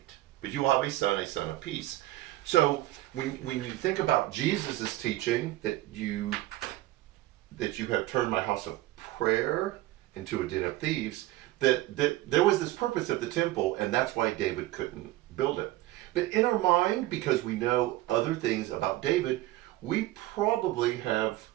But you will have a son of peace." So when you think about Jesus' teaching that you have turned my house of prayer into a den of thieves, that there was this purpose of the temple, and that's why David couldn't build it. But in our mind, because we know other things about David, we probably have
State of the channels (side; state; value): left; quieter; 16.8 dB